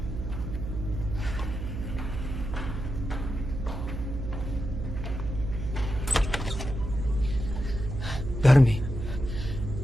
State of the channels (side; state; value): right; noise; hum, 5 dB below the sound